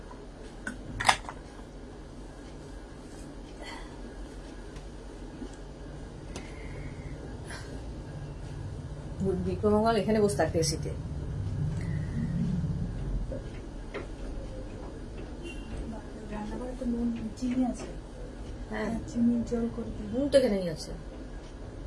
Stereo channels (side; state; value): both; identical; correlation 1.00